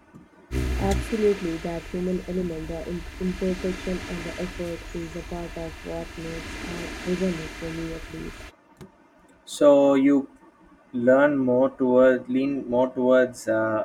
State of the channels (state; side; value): identical; both; correlation 1.00